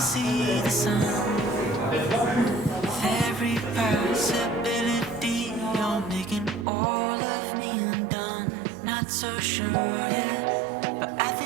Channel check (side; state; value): left; drops out; at 6.7 s